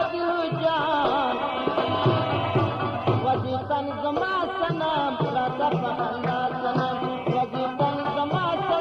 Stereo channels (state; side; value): identical; both; correlation 1.00